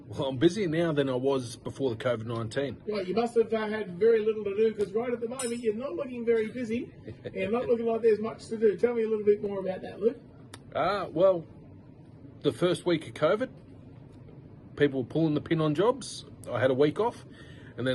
well, I'm busier now than I was before the COVID-19. Well, you must have had very little to do, because right at the moment you're not looking very busy and not looking like there's much to do. Tell me a little bit more about that, Luke. Well, the first week of COVID, people were pulling the pin on jobs. I had a week off, and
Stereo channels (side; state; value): both; identical; correlation 1.00